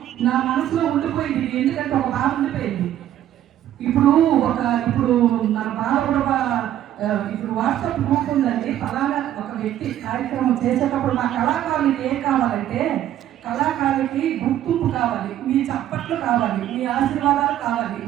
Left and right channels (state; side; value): quieter; left; 11.9 dB